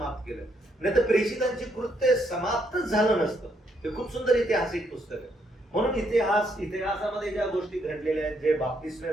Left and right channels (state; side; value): normal; both; correlation 0.74